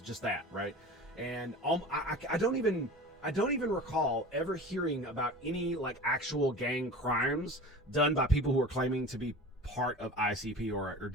just that, right? And I don't even recall ever hearing about any, like, actual gang crimes done by people who are claiming to be part of ICP or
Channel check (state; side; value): normal; both; correlation 0.36